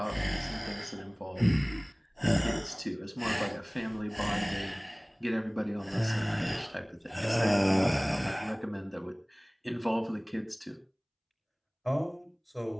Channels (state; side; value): identical; both; correlation 1.00